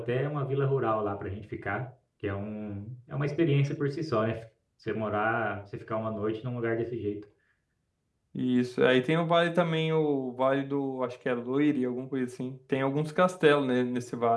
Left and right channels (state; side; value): identical; both; correlation 1.00